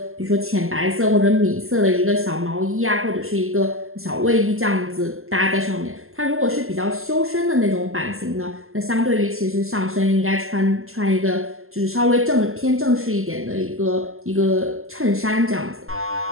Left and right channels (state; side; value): late; left; 0.62 ms